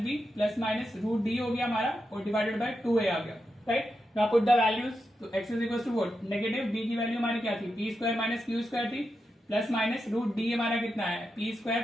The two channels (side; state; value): both; normal; correlation 0.87